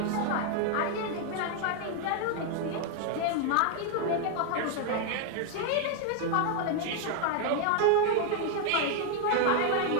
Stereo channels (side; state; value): both; different; correlation 0.00